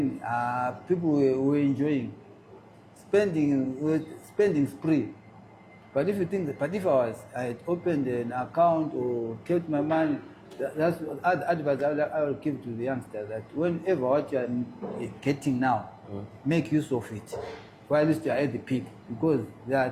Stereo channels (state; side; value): identical; both; correlation 1.00